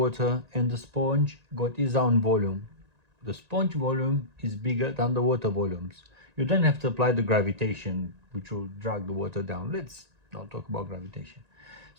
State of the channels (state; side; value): late; left; 1.9 ms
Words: and the sponge got its own volume. The sponge volume is bigger than the water volumes. You don't have to apply the gravitation which will drag the water down. Let's not talk about gravitation.